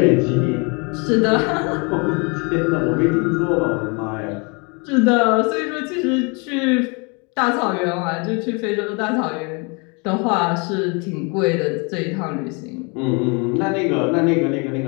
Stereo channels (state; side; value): quieter; right; 31.8 dB